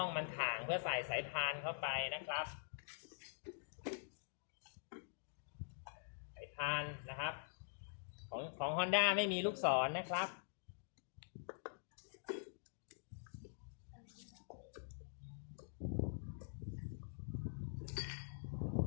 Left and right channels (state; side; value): silent; right; digital silence